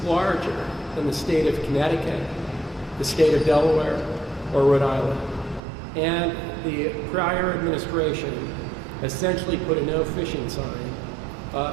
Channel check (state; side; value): drops out; left; at 5.6 s